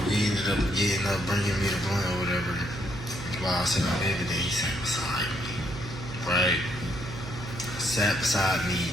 he ended up getting up, bringing me the blunt or whatever, while I was sitting on the bed, and then he sat beside me, right? Sat beside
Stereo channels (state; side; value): noise; right; hum, 10 dB below the sound